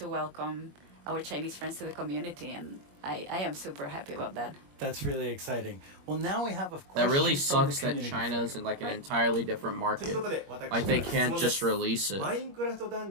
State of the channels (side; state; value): left; late; 21 ms